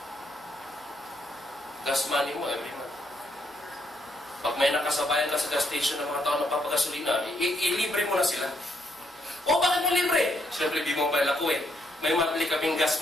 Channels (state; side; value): normal; both; correlation 0.74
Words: gas money mo every month. Pag may nakasabayan ka sa gas station ng mga tao na papagasolina, ilibre mo na sila. O bakit mo libre? Siyempre, B-Mobile ako eh. May monthly kaming